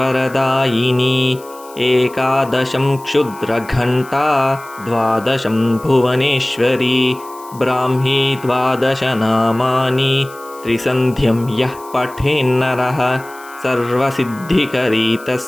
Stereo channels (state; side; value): noise; left; hiss, 22 dB below the sound